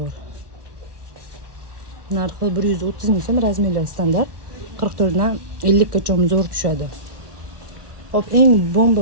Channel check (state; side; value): late; left; 1.3 ms